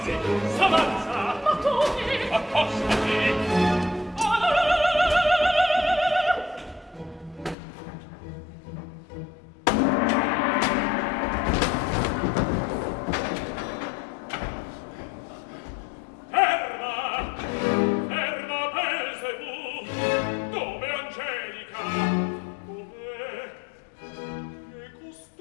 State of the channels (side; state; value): right; drops out; at 7.6 s